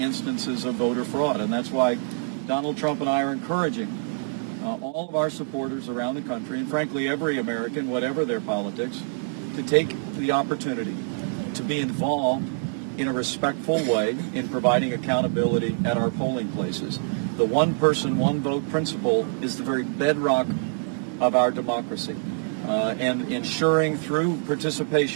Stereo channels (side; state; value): left; silent; digital silence